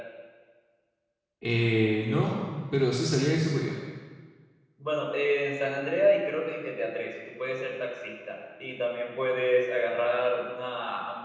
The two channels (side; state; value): both; identical; correlation 1.00